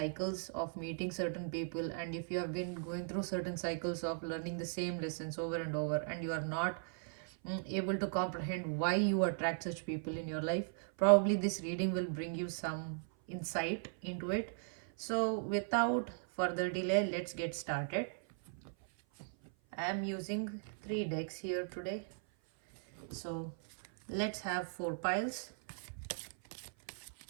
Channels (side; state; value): left; silent; 53 dB below the other